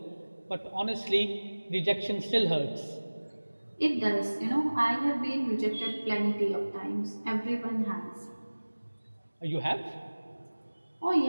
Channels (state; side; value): inverted; both; correlation -1.00